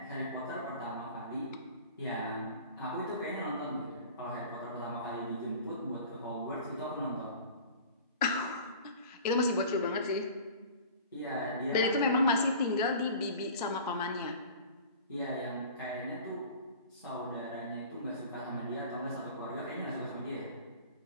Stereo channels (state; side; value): inverted; both; correlation -0.42